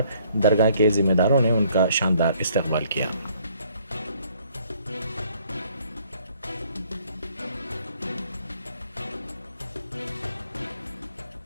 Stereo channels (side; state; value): both; inverted; correlation -0.63